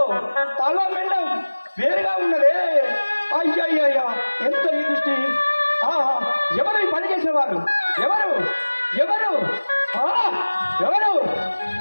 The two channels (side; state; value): both; inverted; correlation -1.00